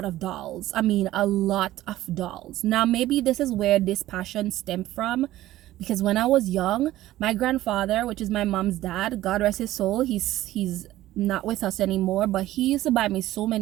of dolls. I mean, a lot of dolls. Now, maybe this is where this passion stemmed from, because when I was young, my grandfather, which is my mom's dad, God rest his soul, he's not with us anymore, but he used to buy me so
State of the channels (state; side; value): quieter; left; 15.1 dB